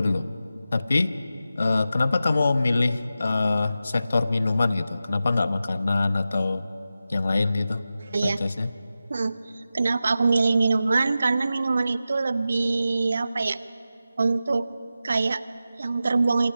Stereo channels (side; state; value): both; inverted; correlation -0.92